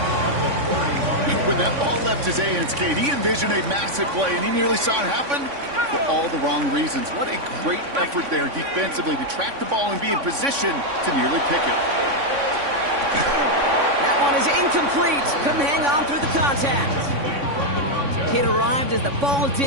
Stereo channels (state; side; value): late; left; 3.5 ms